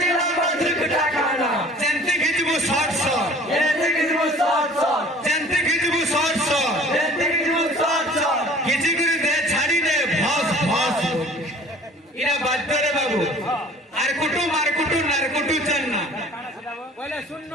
ধুরকুটা খানা চেন্তি খিচবু শর্ট শর্ট চেন্তি খিচবু শর্ট শর্ট খিচি করে দে ছাড়ি দে ভস ভস ইরা বাধ্য রে বাবু আর কুটু মার কুটু নার কুটু চান্না বলে শুনন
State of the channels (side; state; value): both; normal; correlation 0.49